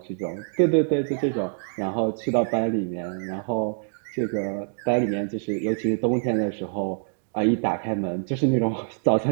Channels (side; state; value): left; silent; digital silence